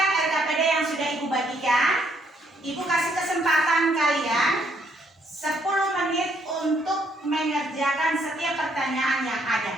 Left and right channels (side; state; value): both; normal; correlation 0.70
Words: LKPD yang sudah Ibu bagikan. Ibu kasih kesempatan kalian 10 menit untuk mengerjakan setiap pertanyaan yang ada,